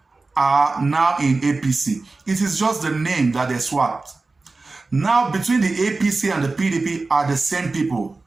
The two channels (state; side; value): quieter; left; 3.6 dB